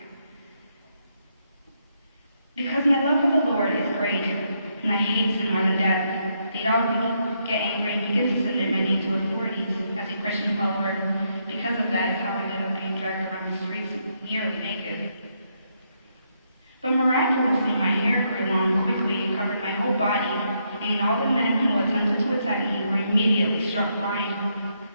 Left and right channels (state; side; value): inverted; both; correlation -0.77